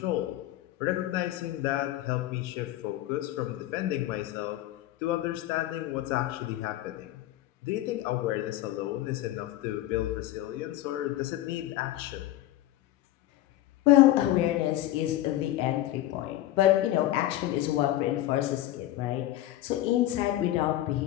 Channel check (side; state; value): right; quieter; 14.5 dB